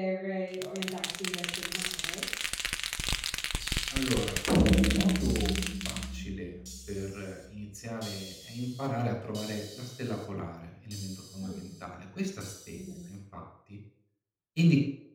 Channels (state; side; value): identical; both; correlation 1.00